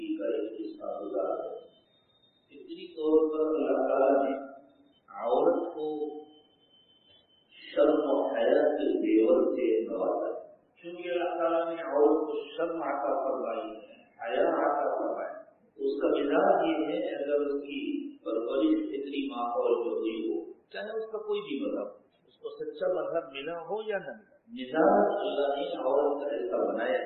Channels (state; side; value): identical; both; correlation 1.00